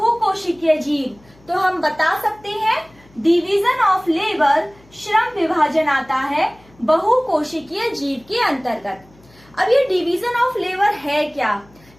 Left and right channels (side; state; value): left; noise; hum, 28 dB below the sound